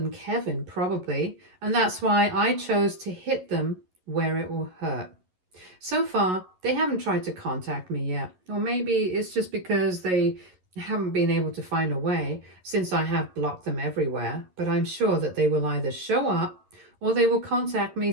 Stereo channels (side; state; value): left; late; 11 ms